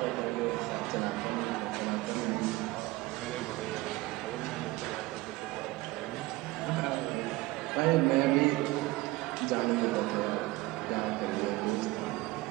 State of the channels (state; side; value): quieter; left; 20.1 dB